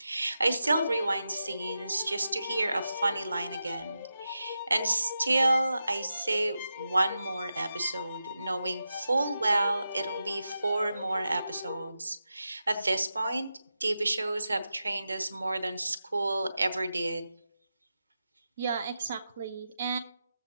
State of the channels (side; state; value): both; inverted; correlation -0.89